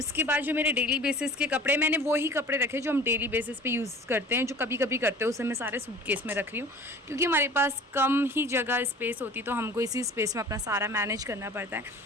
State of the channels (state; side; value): normal; both; correlation 0.44